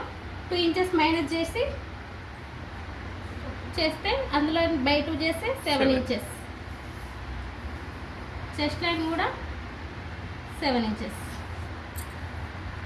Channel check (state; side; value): identical; both; correlation 1.00